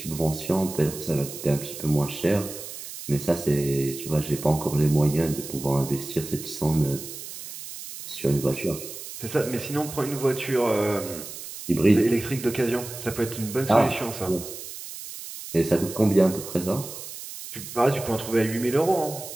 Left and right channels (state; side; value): noise; right; hiss, 11 dB below the sound